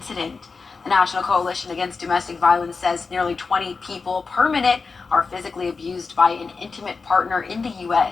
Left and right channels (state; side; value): quieter; right; 4.6 dB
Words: The National Coalition Against Domestic Violence says nearly 20 people per minute are physically abused by an intimate partner in the